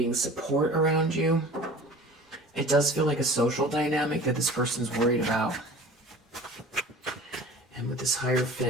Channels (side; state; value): both; normal; correlation 0.42